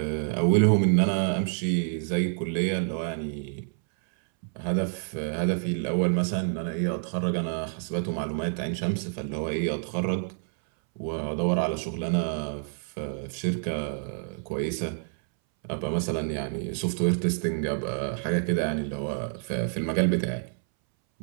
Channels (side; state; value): left; silent; 59 dB below the other